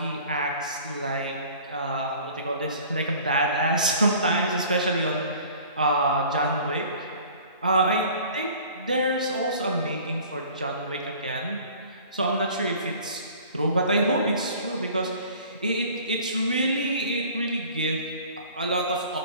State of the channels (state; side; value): inverted; both; correlation -0.47